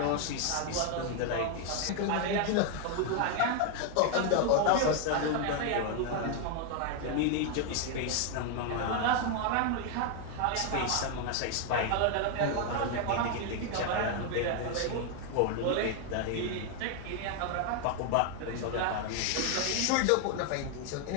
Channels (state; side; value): different; both; correlation 0.01